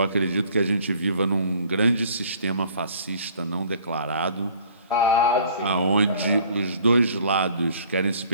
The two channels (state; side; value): inverted; both; correlation -0.54